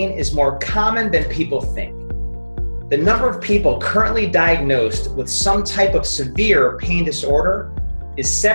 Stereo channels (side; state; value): both; inverted; correlation -1.00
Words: is more common than people think. The number of people currently diagnosed with some type of severe pain disorder is